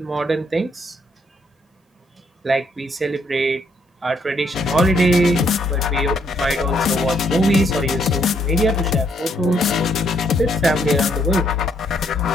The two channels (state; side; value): normal; both; correlation 0.71